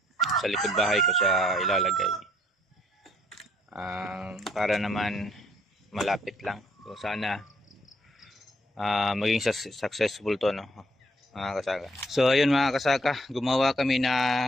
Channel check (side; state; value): both; normal; correlation 0.66